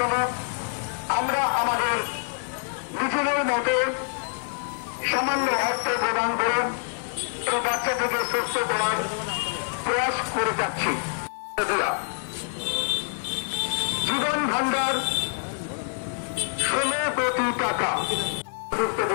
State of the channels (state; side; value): silent; right; digital silence